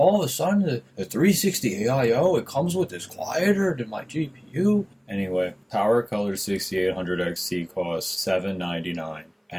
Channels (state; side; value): identical; both; correlation 1.00